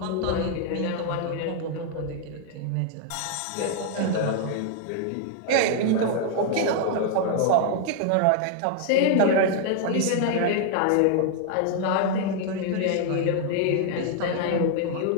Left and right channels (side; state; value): both; different; correlation 0.00